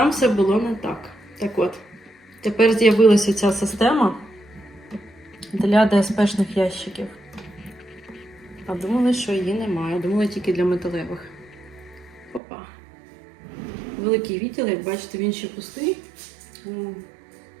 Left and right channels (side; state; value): left; drops out; at 12.4 s